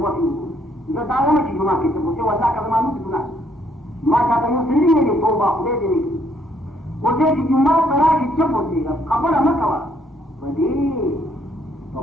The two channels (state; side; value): normal; both; correlation 0.68